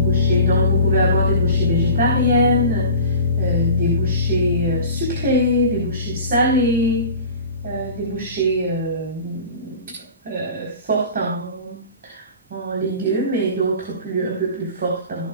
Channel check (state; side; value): inverted; both; correlation -0.40